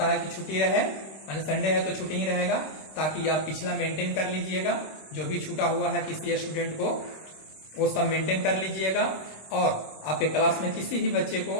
है कि छुट्टी रहे, यानी संडे है तो छुट्टी ही रहेगा, ताकि आप पिछला मेंटेन कर लीजिएगा। जो भी छूटा हुआ है किसी स्टूडेंट को वो सब मेंटेन कर लीजिएगा। और आपके क्लास में किसी भी बच्चे को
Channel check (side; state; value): right; late; 26 ms